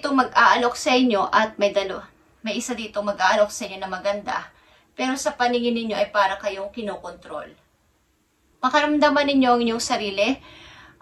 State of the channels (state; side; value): identical; both; correlation 1.00